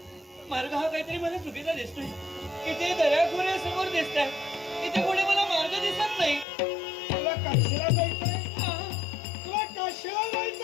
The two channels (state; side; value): drops out; right; at 6.5 s